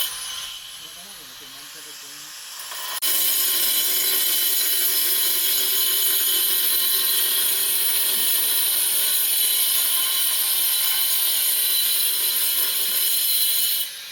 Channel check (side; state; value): both; identical; correlation 1.00